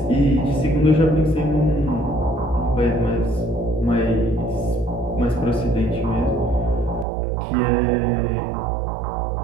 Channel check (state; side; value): drops out; left; at 7.1 s